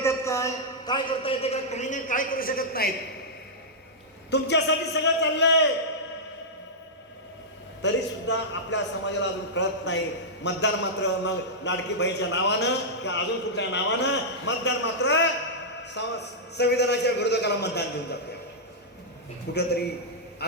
काय करता येते का, काही नाही काय करू शकत नाहीत. तुमच्यासाठी सगळं चाललंय तरी सुद्धा आपल्या समाजाला अजून कळत नाही. मतदान मात्र मग लाडकी बहीणच्या नावानं किंवा अजून कुठल्या नावानं मतदान मात्र संविधानाच्या विरोधकाला मतदान देऊन जाते. कुठेतरी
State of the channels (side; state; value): both; normal; correlation -0.10